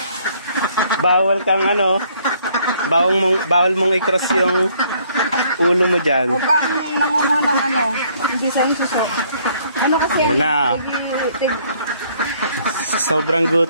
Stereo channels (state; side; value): inverted; both; correlation -0.64